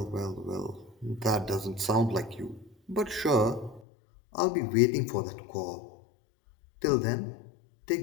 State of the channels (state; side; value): drops out; right; at 3.8 s